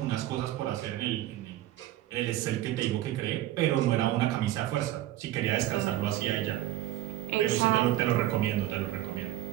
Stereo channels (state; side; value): quieter; left; 14.2 dB